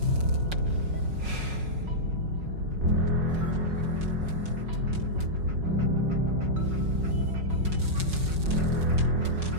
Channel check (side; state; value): left; late; 5.4 ms